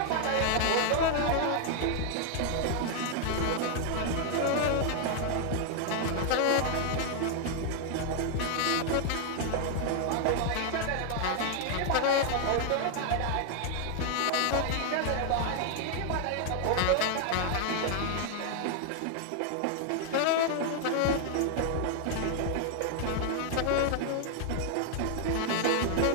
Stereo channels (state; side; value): different; both; correlation 0.00